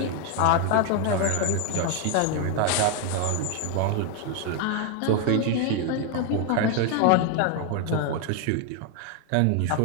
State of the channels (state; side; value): different; both; correlation 0.01